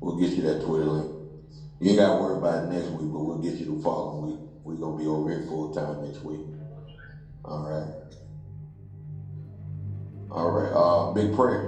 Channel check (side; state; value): both; identical; correlation 1.00